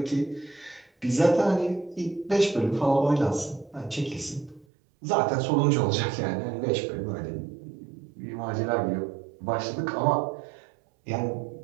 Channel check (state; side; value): drops out; left; at 4.7 s